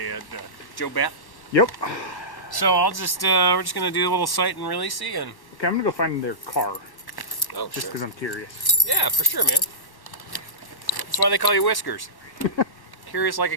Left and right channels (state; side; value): late; right; 1.1 ms